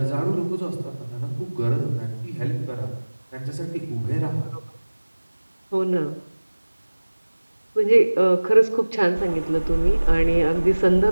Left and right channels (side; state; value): both; inverted; correlation -1.00